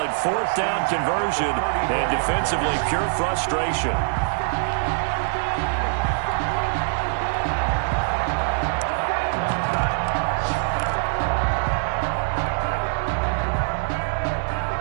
4th down conversion. And defensively, pure frustration.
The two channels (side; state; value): left; silent; 63 dB below the other